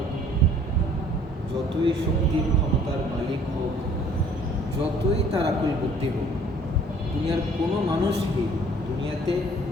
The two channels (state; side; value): normal; both; correlation 0.55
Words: যতই শক্তির ক্ষমতার মালিক হোক, যতই তার আকুল বুদ্ধি হোক, দুনিয়ার কোনো মানুষই দুনিয়াতে